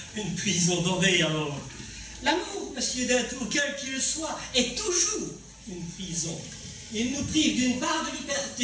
Une prison dorée alors. L'amour, monsieur Deltour, quel qu'il soit, est toujours une prison. Il nous prive d'une part de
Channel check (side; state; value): both; identical; correlation 1.00